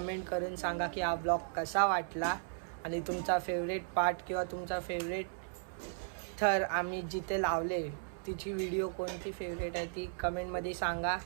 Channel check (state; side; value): silent; left; 54 dB below the other